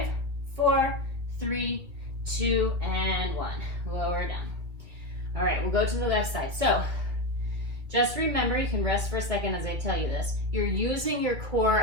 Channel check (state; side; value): late; left; 2.4 ms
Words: 4, 3, 2, and 1. Lower down. All right, we'll go to the left side. So Just remember, you can rest for a second as I tell you this. You're using your core